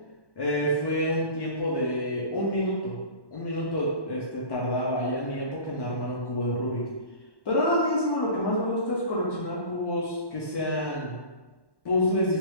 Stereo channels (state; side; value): late; right; 1.1 ms